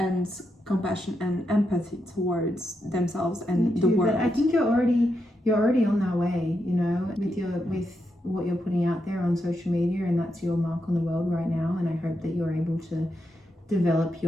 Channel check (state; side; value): normal; both; correlation 0.84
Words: compassion and empathy towards themselves and the world. But I think you're already on that way, you know, with what you're putting out there on social media, and that's your mark on the world right now. And I hope that you're able to develop